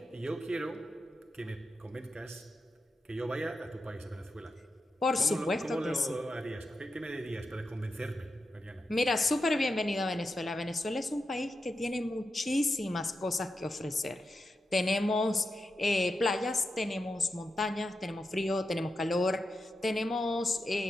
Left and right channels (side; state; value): both; normal; correlation 0.88